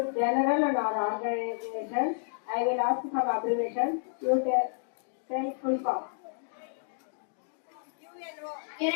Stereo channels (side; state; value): right; silent; digital silence